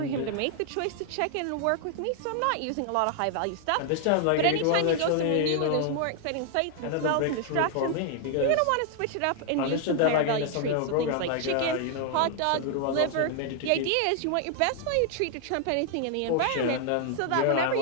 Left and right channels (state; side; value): different; both; correlation 0.00